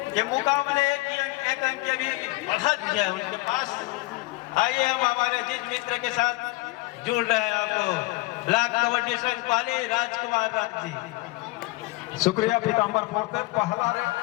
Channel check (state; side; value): quieter; right; 21.8 dB